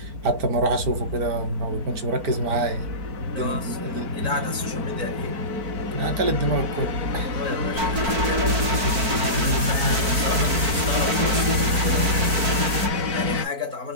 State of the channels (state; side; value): late; left; 4.5 ms